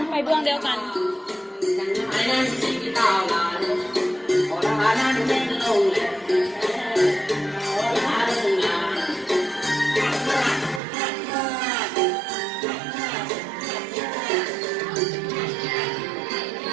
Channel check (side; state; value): left; drops out; at 10.8 s